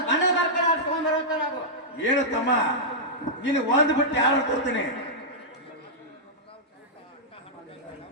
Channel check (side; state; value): both; normal; correlation -0.11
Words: ಬಣ್ಣದ ಬರ್ಕೊಂಡು ಆಡ್ಸ್ಕೊಂಡ್ ಬರುವಂತ ನಾವು ಏನು ತಮ್ಮ ನೀನು ಒಂದು ಬಿಟ್ಟು ಯಾರು ತೋರ್ತೀನಿ.